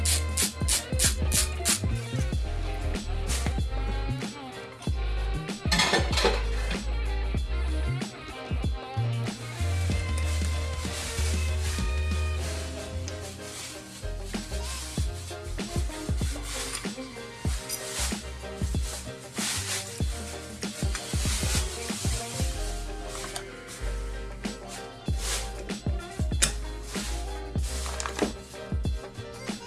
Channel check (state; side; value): identical; both; correlation 1.00